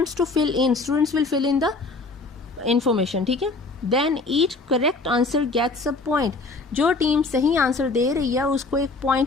to fill in. Students will fill in the information, ठीक है। Then each correct answer gets a point. जो team सही answer दे रही है उसको एक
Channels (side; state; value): right; quieter; 3.5 dB